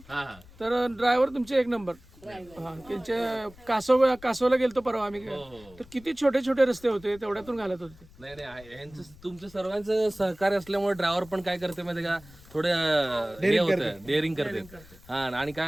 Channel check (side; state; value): left; noise; rumble, 23 dB below the sound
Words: तर ड्रायव्हर तुमचे 1 नंबर. हा, त्यांच्या कासवला गेलतो परवा आम्ही, तर किती छोटे छोटे रस्ते होते, तेवढ्यातून घालत होते. नाही यांचं तुमचं सर्वांचं सहकार्य असल्यामुळे ड्रायव्हर पण काय करते माहिती का, थोडं डेअरिंग करते. हा, आणि